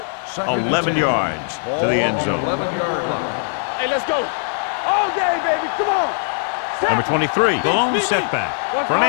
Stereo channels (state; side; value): silent; right; digital silence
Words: Second 11 yards to the end zone. 11-yard line. Hey, let's go. All day, baby. Come on. Set. Number 23, the lone setback.